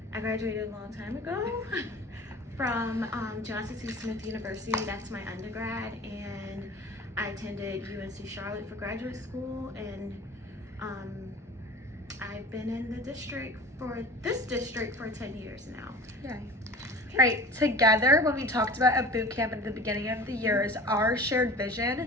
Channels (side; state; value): both; normal; correlation 0.40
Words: I graduated a long time ago from Johnson C. Smith University. That's my undergrad, and I attended UNC Charlotte for graduate school, and I've been in this district for 10 years now. Yay. All right, together, when we talked about a boot camp at the beginning of the years, our shared